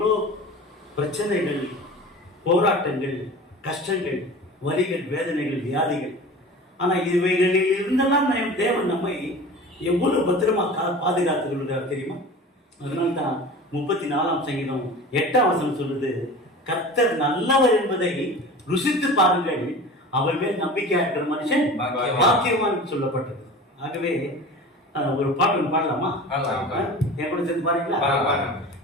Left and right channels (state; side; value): normal; both; correlation 0.37